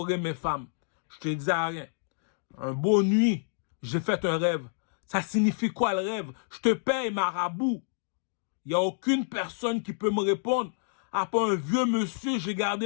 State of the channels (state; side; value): silent; right; digital silence